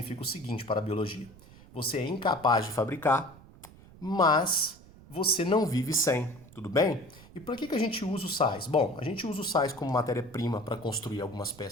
o seguinte para a biologia: você é incapaz de fabricar, mas você não vive sem, tudo bem? E para que a gente usa os sais? Bom, a gente usa os sais como matéria-prima para construir algumas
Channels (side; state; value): right; noise; rumble, 21 dB below the sound